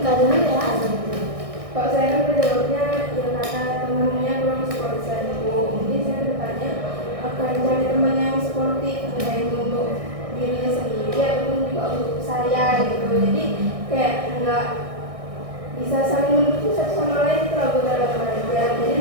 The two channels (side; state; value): left; late; 1.6 ms